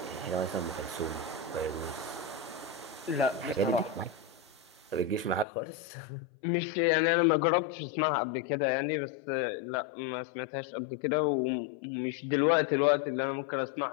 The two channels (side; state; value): right; drops out; at 5.5 s